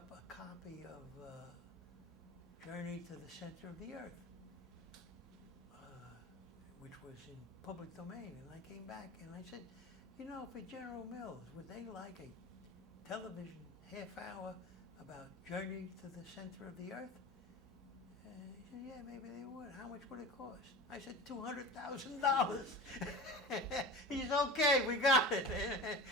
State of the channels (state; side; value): normal; both; correlation 0.33